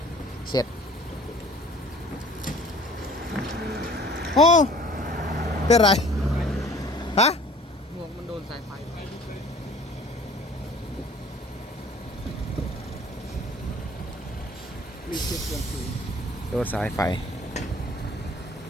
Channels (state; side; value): normal; both; correlation 0.51